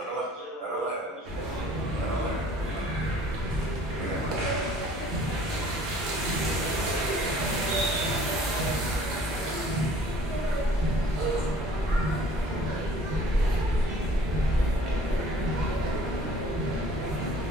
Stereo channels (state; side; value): normal; both; correlation 0.53